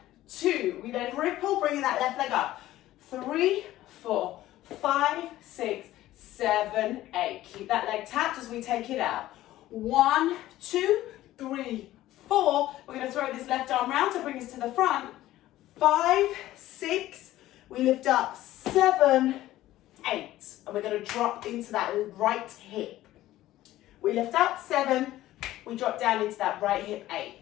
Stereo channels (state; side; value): quieter; right; 15.0 dB